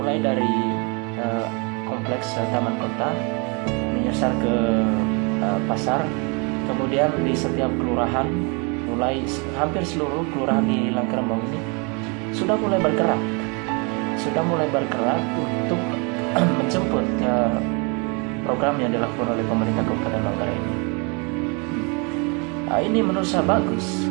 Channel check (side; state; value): left; quieter; 32.5 dB